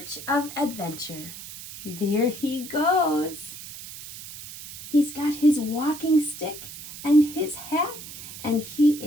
of adventure. There he goes. He's got his walking stick and his hat, and he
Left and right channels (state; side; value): noise; right; hiss, 13 dB below the sound